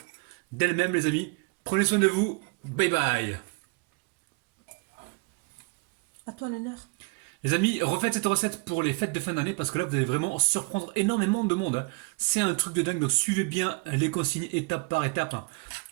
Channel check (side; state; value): left; quieter; 29.4 dB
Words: d'elles-mêmes les amis. Prenez soin de vous. Bye bye. À toi l'honneur. Les amis, refaites cette recette pour les fêtes de fin d'année parce que là vous allez vraiment surprendre énormément de monde. C'est un truc de dingue, donc suivez bien les consignes étape par étape